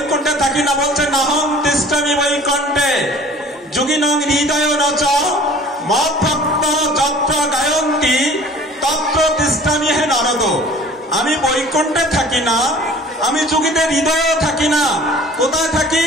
থাকি না, বলছেন নাহং তিষ্ঠামি বৈকুণ্ঠে যোগিনং হৃদয় নচ মদ্ভক্ত যত্র গায়ন্তি তত্র তিষ্ঠামি হে নারদ। আমি বৈকুণ্ঠে থাকি না, আমি যোগীদের হৃদয়েও থাকি না। কোথায় থাকি?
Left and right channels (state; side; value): normal; both; correlation 0.47